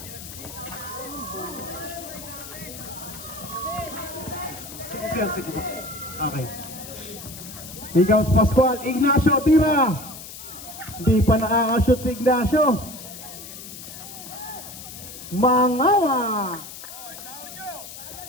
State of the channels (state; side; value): noise; left; hiss, 13 dB below the sound